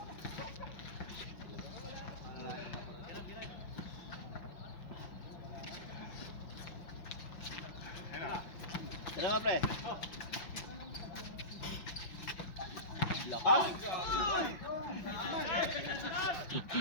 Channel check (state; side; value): late; right; 5.9 ms